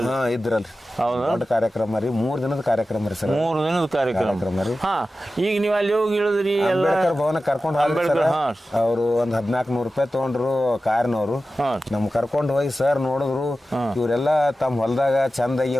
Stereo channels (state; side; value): normal; both; correlation 0.94